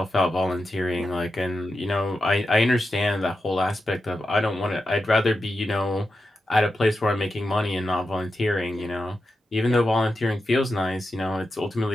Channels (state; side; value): normal; both; correlation 0.89